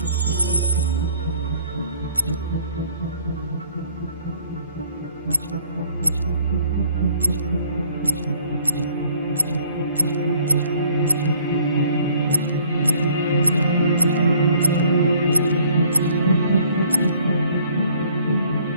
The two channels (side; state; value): both; inverted; correlation -0.58